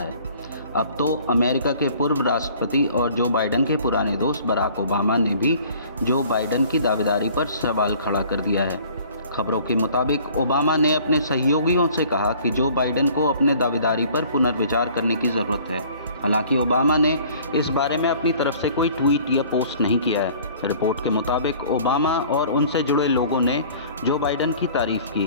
अब तो अमेरिका के पूर्व राष्ट्रपति और जो बाइडेन के पुराने दोस्त बराक ओबामा ने भी जो बाइडेन की दावेदारी पर सवाल खड़ा कर दिया है। खबरों के मुताबिक ओबामा ने अपने सहयोगियों से कहा कि जो बाइडेन को अपने दावेदारी पर पुनर्विचार करने की ज़रूरत है। हालांकि ओबामा ने इस बारे में अपनी तरफ से कोई ट्वीट या पोस्ट नहीं किया है। रिपोर्ट के मुताबिक ओबामा और उनसे जुड़े लोगों ने जो बाइडेन की तारीफ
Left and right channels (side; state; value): both; inverted; correlation -0.52